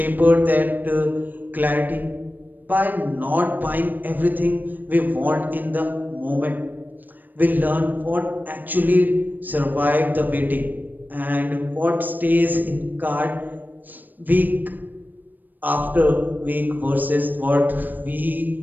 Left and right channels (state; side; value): late; left; 0.088 ms